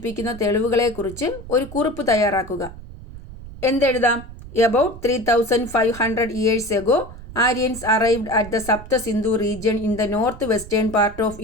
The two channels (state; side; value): noise; right; rumble, 15 dB below the sound